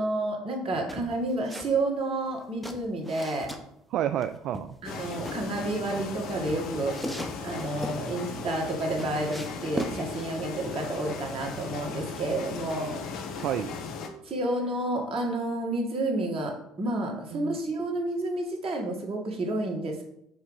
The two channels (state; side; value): normal; both; correlation 0.57